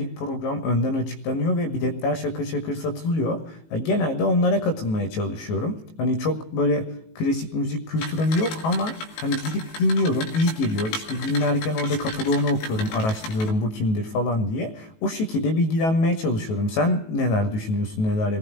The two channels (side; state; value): right; late; 19 ms